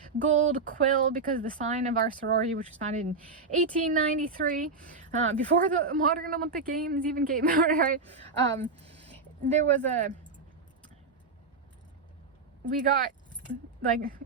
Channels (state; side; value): quieter; left; 4.1 dB